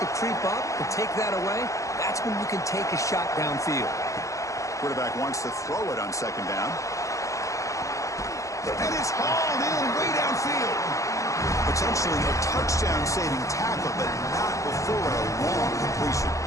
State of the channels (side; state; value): right; late; 0.15 ms